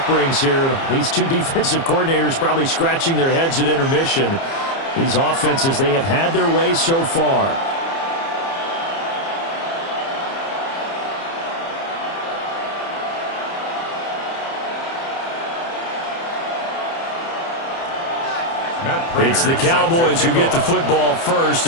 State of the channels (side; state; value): right; late; 30 ms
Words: brings here. These two defensive coordinators probably scratching their heads at intermission. These offenses, they have had their way so far. It's the Cowboys who get the football first,